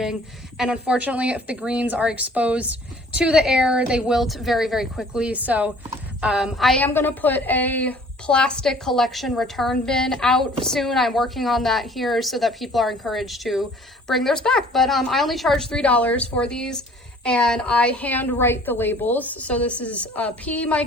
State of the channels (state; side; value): normal; both; correlation 0.53